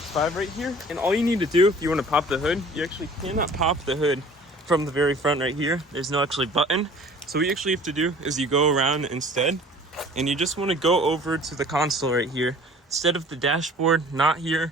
right here. And all you need to do if you want to pop the hood, you actually cannot pop the hood from the very front right here. There's no actually button. So what you actually have to do is you go around instead, and you just want to go over to the console right here. Instead of the dashboard, not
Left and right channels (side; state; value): both; normal; correlation 0.48